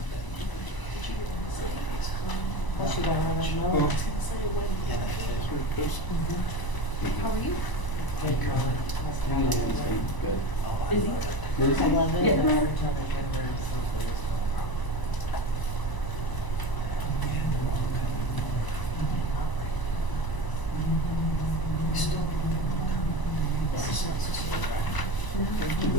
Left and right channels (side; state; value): right; late; 1.0 ms